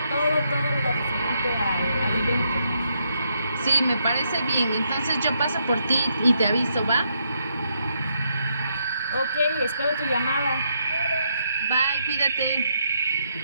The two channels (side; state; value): both; inverted; correlation -0.77